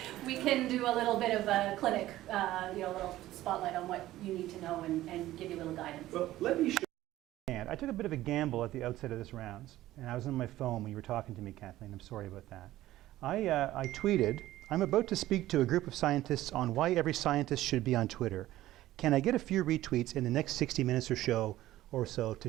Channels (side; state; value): left; quieter; 15.1 dB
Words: we can do a little bit of a clinic, a little spotlight on what you need to know and give you a little guidance. Well, let me show you. I took a bit of a gamble at the outset of this rounds, and I was on my phone when you were talking to me, Kathleen. I'm sorry about that. I tweeted, I'm about to speak to a group of scientists on why every scientist should be on Twitter. Can I get a few retweets in the next 60 minutes or so to